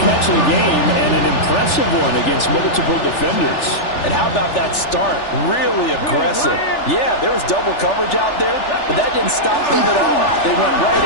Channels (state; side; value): late; right; 3.4 ms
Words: catch of the game, and an impressive one against multiple defenders. And how about that start? Really aggressive. Yeah, there was double coverage out there, but that didn't stop them at all. They went right